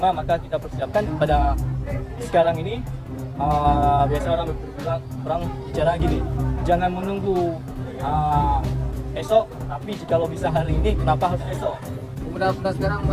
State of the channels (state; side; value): identical; both; correlation 1.00